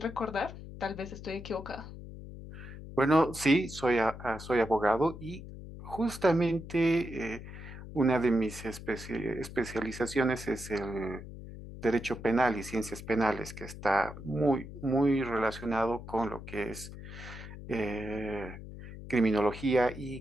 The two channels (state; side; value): noise; left; hum, 12 dB below the sound